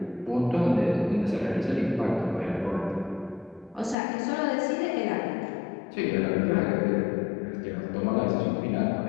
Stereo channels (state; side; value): drops out; right; at 4.0 s